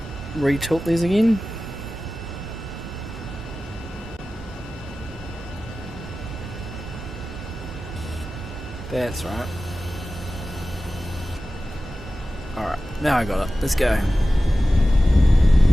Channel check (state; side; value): normal; both; correlation 0.95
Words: re-tilt these again? That's right. Alright, now I got it. Let's go.